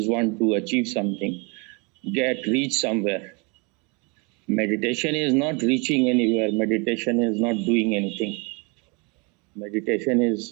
want to achieve something, reach somewhere. Meditation is not reaching anywhere. Meditation is not doing anything. Meditation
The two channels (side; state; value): left; quieter; 31.0 dB